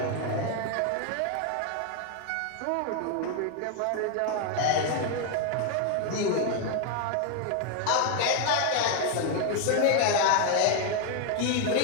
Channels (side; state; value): both; different; correlation 0.01